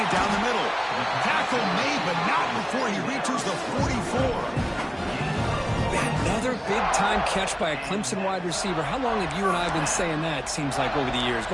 down the middle. Tackle made, but not before he reaches the 44. Another big-time catch by a Clemson wide receiver. How long have you and I been saying that, seems like, over the years?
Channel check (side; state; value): both; identical; correlation 1.00